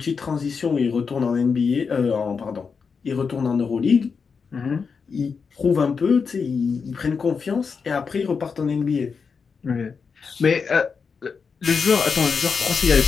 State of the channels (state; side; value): quieter; right; 5.5 dB